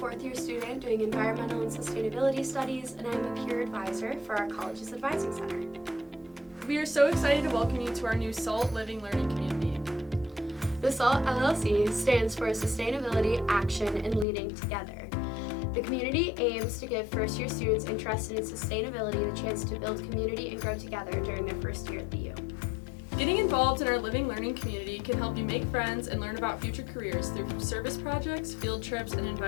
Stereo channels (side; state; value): right; drops out; at 14.2 s